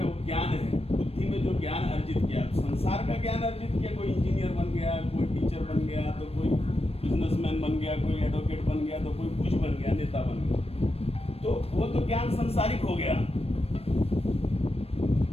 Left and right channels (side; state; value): right; late; 0.29 ms